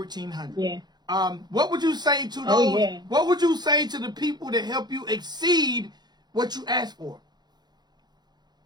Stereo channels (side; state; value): left; late; 0.20 ms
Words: Yeah. What would you say to those? Oh, yeah. What would you say to the people that help you exceed what you asked for?